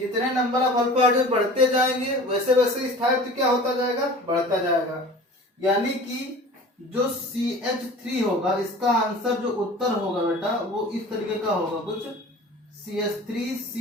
नंबर ऑफ अल्फा हाइड्रोजन बढ़ते जाएंगे वैसे वैसे स्थायित्व क्या होता जाएगा? बढ़ता जाएगा। यानी कि जो CH3 होगा, इसका आंसर जो उत्तर होगा बेटा वो इस तरीके का होगा कुछ, CH3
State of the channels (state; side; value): normal; both; correlation 0.41